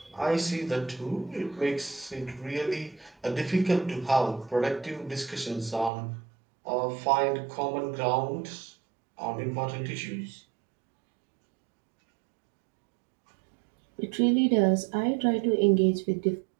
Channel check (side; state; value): left; drops out; at 5.9 s